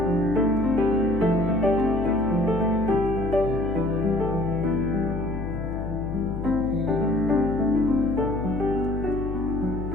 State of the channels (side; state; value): left; noise; hum, 6 dB below the sound